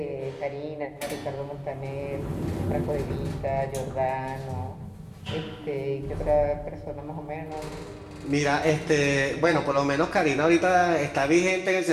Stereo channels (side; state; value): both; identical; correlation 1.00